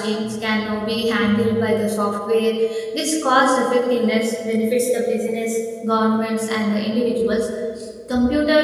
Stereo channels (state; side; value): identical; both; correlation 1.00